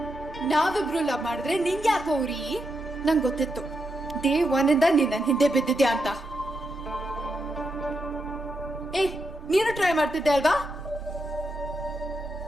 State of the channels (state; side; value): normal; both; correlation 0.84